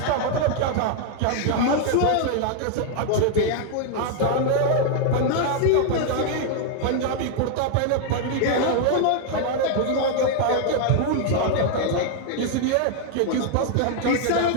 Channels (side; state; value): both; different; correlation 0.00